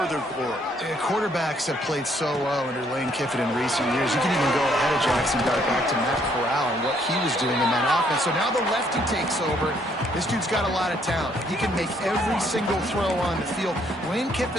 glory. Quarterbacks have played so well under Lane Kiffin in recent years. You can even go ahead of Jackson Dart back to Matt Corral and what he was doing in that offense. So now the lefty takes over. This dude's got a lot of talent. He can make every single throw on the field. Lane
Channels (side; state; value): both; normal; correlation 0.68